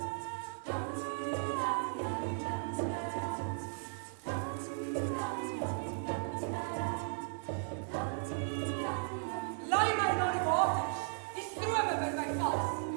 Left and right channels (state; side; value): silent; left; 54 dB below the other